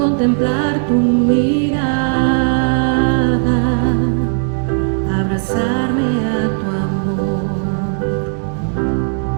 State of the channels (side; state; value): left; silent; digital silence